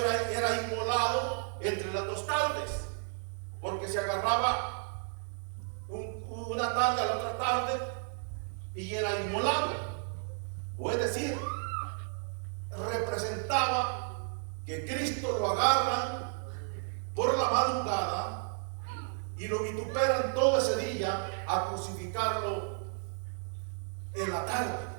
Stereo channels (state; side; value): silent; left; 56 dB below the other